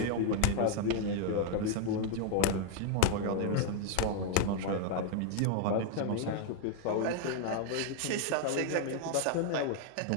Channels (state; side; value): different; both; correlation 0.00